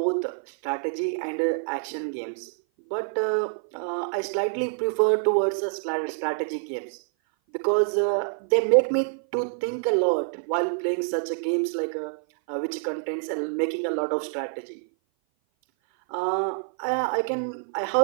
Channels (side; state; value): left; silent; 57 dB below the other